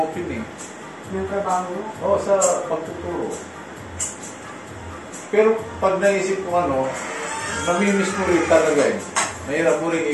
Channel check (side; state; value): both; identical; correlation 1.00